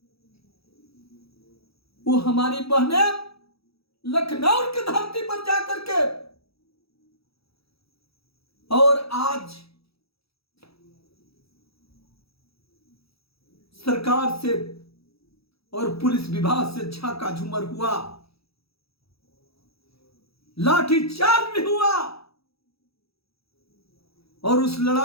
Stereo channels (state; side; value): late; right; 0.77 ms